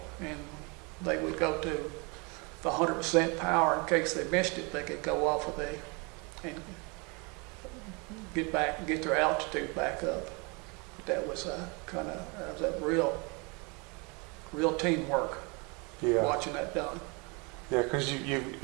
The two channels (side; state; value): left; quieter; 30.2 dB